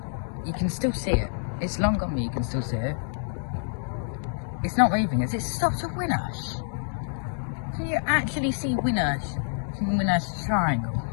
you can still see it. It's long gone, but you can still see it. It's not moving as it stops at Winnersh. Can you actually see Winnersh from Winnersh Triangle?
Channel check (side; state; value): right; silent; digital silence